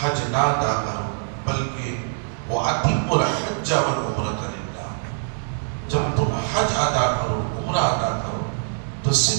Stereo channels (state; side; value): silent; left; digital silence